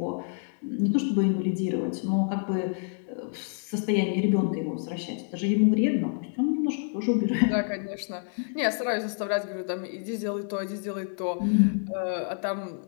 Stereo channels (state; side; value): silent; right; 59 dB below the other